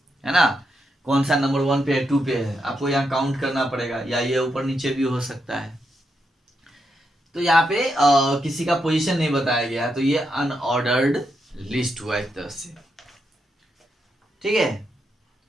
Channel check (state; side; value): normal; both; correlation 0.83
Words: ना। कौन सा नंबर 1 पे है, 2 पे है, आपको यहाँ काउंट करना पड़ेगा, या ये ऊपर नीचे भी हो सकता है। तो यहाँ पे किसी का पोजीशन नहीं बताया गया है, तो ये अनऑर्डर्ड लिस्ट हुआ एक तरह से। ठीक है,